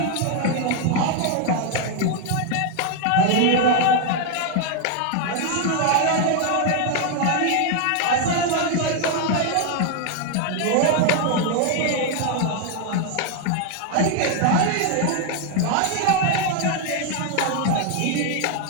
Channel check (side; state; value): both; different; correlation 0.00